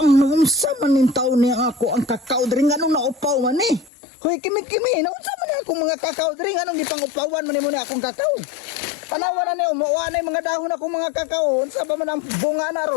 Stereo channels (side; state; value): right; drops out; at 3.9 s